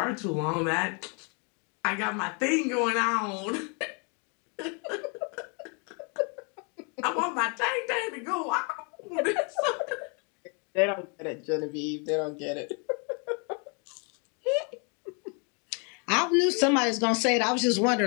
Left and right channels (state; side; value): quieter; right; 35.9 dB